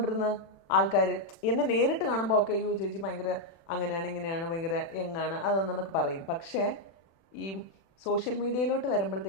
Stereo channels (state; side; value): late; right; 36 ms